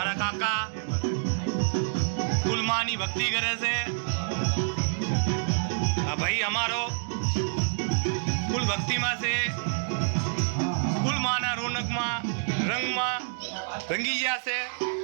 काका फूल मानी भक्ति करे से भाई हमारो फूल भक्ति में से फूल माना रौनक में रंग में रंगी गया से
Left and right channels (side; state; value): left; silent; digital silence